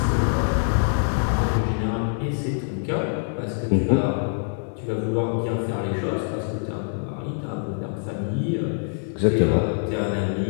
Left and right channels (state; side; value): silent; right; digital silence